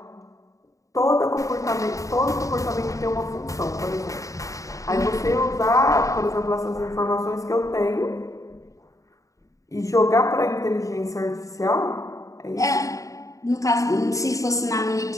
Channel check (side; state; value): right; late; 0.16 ms